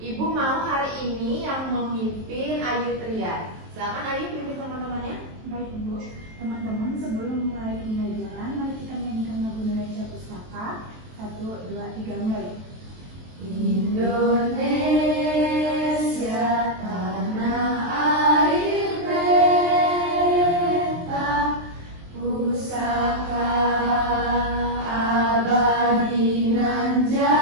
mau hari ini yang memimpin Ayu Tria. Silakan Ayu pimpin teman-temannya. Baik Bu, teman-teman sebelum mulai pembelajaran, mari kita menyanyikan lagu Indonesia Pustaka. 1, 2, 3, mulai. Indonesia tanah air beta, pusaka abadi nan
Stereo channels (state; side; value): late; left; 23 ms